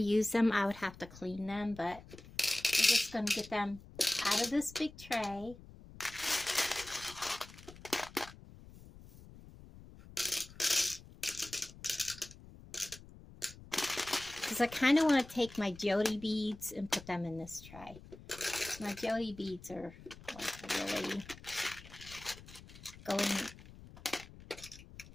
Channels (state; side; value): noise; left; rumble, 18 dB below the sound